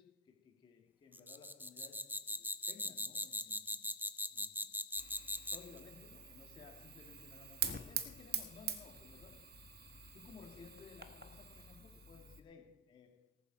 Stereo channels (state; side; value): normal; both; correlation -0.12